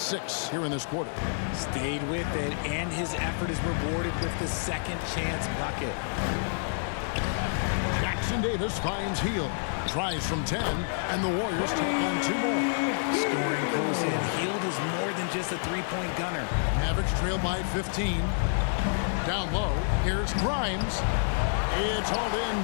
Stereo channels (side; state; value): right; silent; digital silence